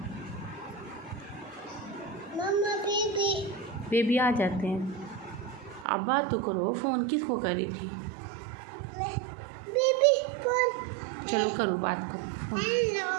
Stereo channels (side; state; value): left; drops out; at 5.9 s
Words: मम्मा बेबी आ जाते हैं। आप बात तो करो, फ़ोन किसको कर रही थी? Baby phone. चलो करो, बात करो फ़ोन। हेलो